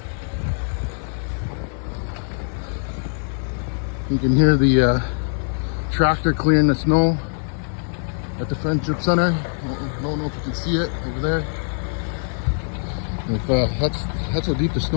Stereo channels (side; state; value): right; silent; digital silence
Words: You can hear the tractor clearing the snow at the Friendship Center. I don't know if you can see it over there. If, that's how deep the